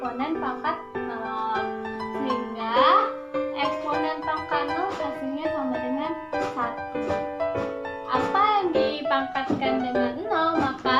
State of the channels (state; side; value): identical; both; correlation 1.00